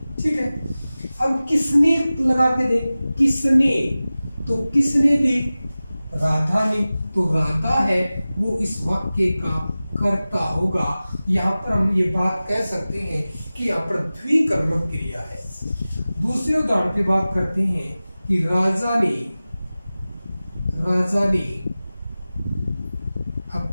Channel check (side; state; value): both; inverted; correlation -0.97